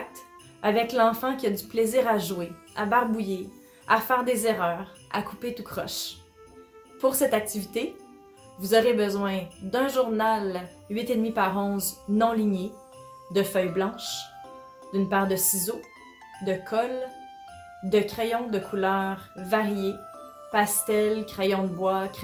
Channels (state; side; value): identical; both; correlation 1.00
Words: avec l'enfant qui a du plaisir à jouer, à barbouiller, à faire des erreurs, à couper tout croche. Pour cette activité, vous aurez besoin d'un journal 8,5 par 11 non ligné, de feuilles blanches, d'une paire de ciseaux, de colle, de crayons de couleurs variées, pastel, crayon de bois,